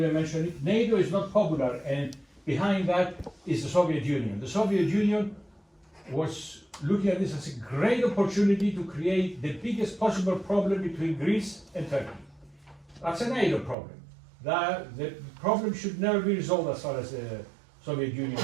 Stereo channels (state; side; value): drops out; left; at 13.8 s